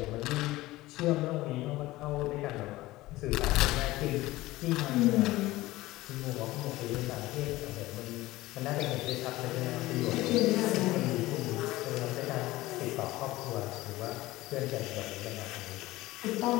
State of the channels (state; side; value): quieter; right; 18.1 dB